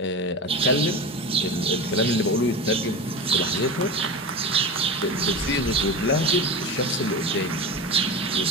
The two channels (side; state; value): both; normal; correlation 0.27